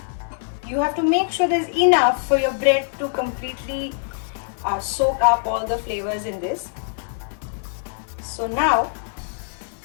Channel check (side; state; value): right; silent; digital silence